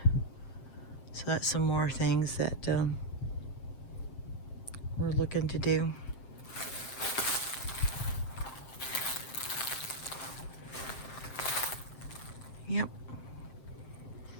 So that's some more things that we're looking to do. Yep.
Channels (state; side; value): late; right; 7.6 ms